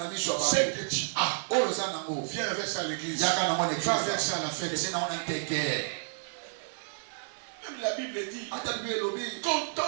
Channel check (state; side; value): silent; left; digital silence